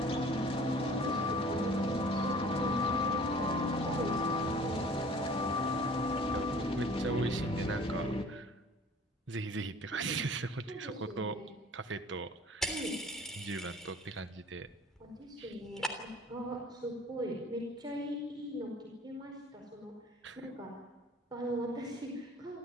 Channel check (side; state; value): both; normal; correlation 0.49